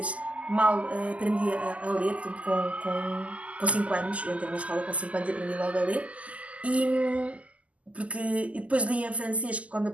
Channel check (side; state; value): left; late; 0.068 ms